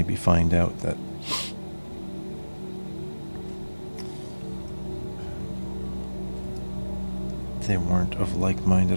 find out that they weren't of like mind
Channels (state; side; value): inverted; both; correlation -1.00